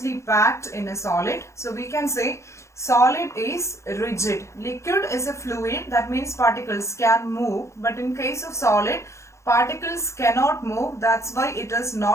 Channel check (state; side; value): late; right; 0.14 ms